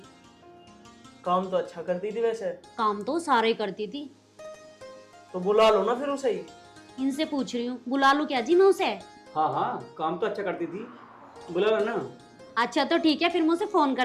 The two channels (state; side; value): identical; both; correlation 1.00